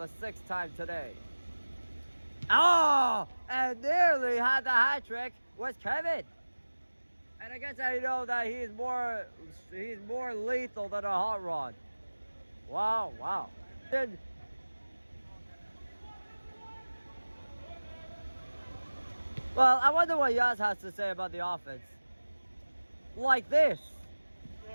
6th time today. Oh, and nearly had the hat trick was Kevin. And I guess I know that he's more lethal than a hot rod. Wow. Well, I wonder what Yaz has to say about the offense. Like this.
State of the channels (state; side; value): inverted; both; correlation -1.00